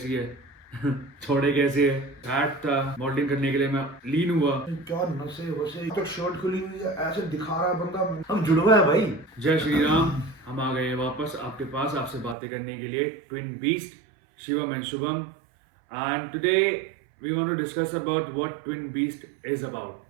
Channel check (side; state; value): left; drops out; at 12.4 s